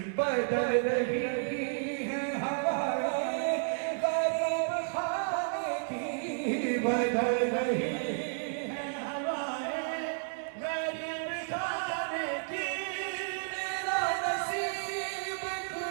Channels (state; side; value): silent; left; digital silence